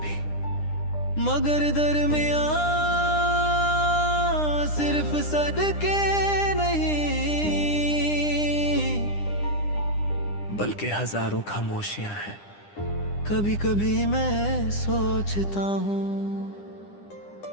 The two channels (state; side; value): late; right; 9.9 ms